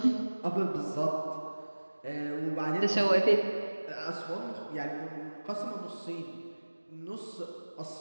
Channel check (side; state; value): both; inverted; correlation -1.00